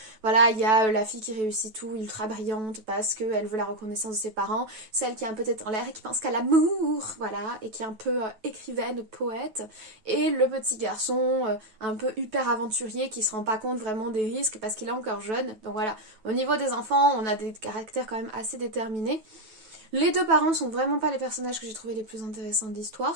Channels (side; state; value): left; late; 9.2 ms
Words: voilà, il y a la fille qui réussit tout, ultra brillante, parce qu'elle veut la reconnaissance de ses parents, celle qui est un peu tête en l'air et qui pense qu'à l'amour, voilà, et qui est un peu écrivaine, poète, et le petit garçon un peu hyper aventurier qui se rend pas compte vraiment des risques parce qu'il est encore jeune. Donc voilà, au niveau des enfants, on a des caractères quand même assez déterminés. Les 2 parents sont vraiment pas les personnages que j'ai trouvé les plus intéressants de